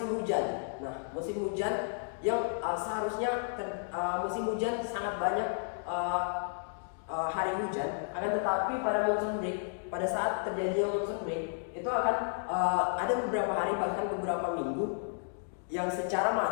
hujan. Nah, musim hujan yang seharusnya musim hujan sangat banyak hari hujan, akan tetapi pada monsoon break, pada saat terjadi monsoon break itu akan ada beberapa hari bahkan beberapa minggu yang secara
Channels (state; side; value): silent; right; digital silence